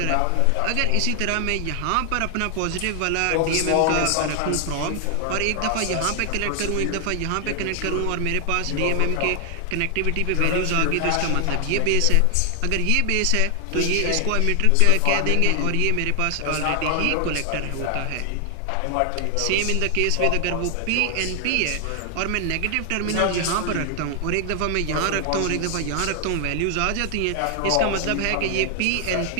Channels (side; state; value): both; different; correlation 0.00